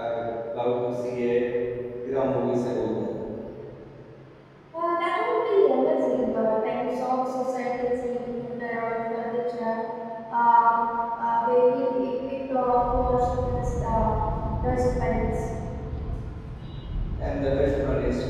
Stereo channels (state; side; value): identical; both; correlation 1.00